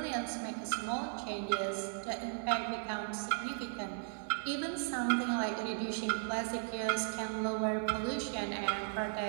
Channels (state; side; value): silent; left; digital silence